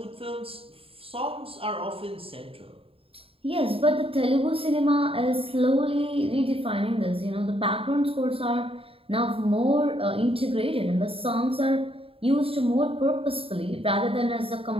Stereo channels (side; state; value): left; late; 0.27 ms